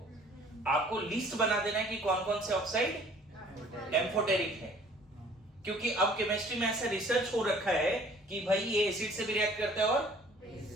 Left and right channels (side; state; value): both; normal; correlation 0.54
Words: आपको लिस्ट बना देना है कि कौन कौन से ऑक्साइड एम्फोटेरिक है। क्योंकि अब केमिस्ट्री में ऐसा रिसर्च हो रखा है कि भाई ये एसिड से भी रिएक्ट करता है और